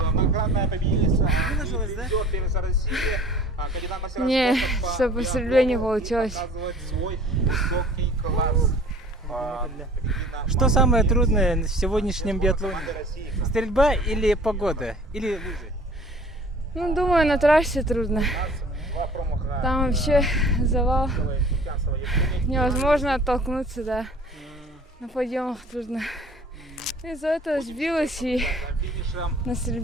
Многократная победительница. Не, что по стрельбе не получилось. Что самое трудное в сегодняшнем биатлоне? Стрельба или погода? Или лыжи? Ну, думаю, на трассе трудно. Там вообще завал. Невозможно оттолкнуться, да. На подъемах трудно. Из-за этого сбилась и на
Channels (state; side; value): normal; both; correlation 0.49